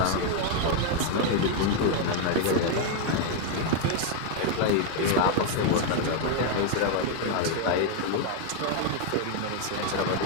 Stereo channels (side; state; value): both; different; correlation 0.01